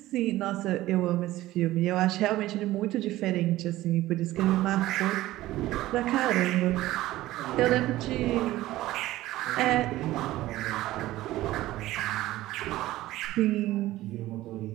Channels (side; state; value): left; quieter; 16.2 dB